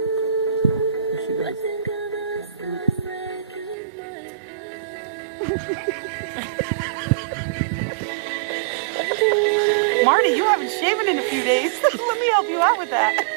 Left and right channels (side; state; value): left; drops out; at 3.8 s